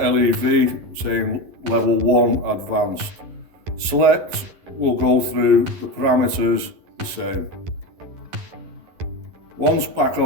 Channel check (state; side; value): late; left; 11 ms